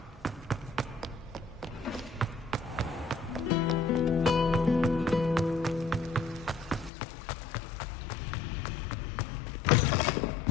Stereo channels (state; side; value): drops out; right; at 6.9 s